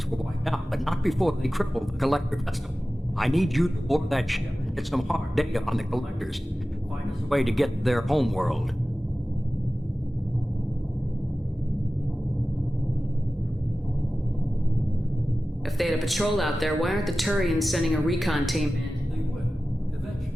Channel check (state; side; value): normal; both; correlation 0.96